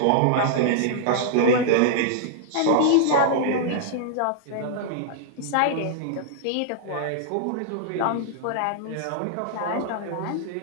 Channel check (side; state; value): both; different; correlation -0.01